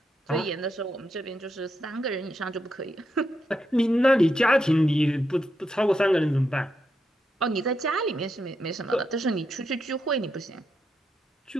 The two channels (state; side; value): normal; both; correlation 0.83